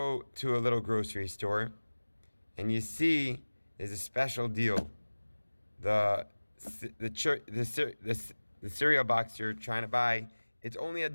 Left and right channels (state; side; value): inverted; both; correlation -1.00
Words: to a little grocery store and you see there's a special deal. The cereal box you're trying to buy, it's only